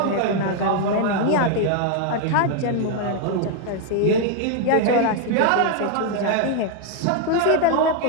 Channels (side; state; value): both; different; correlation 0.00